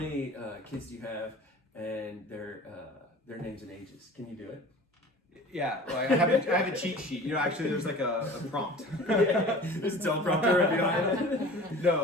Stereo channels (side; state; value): both; normal; correlation 0.41